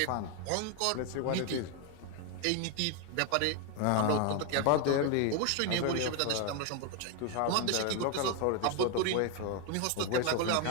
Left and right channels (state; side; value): different; both; correlation 0.01